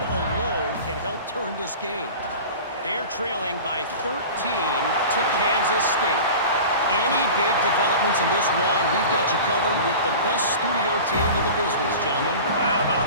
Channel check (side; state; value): both; inverted; correlation -0.36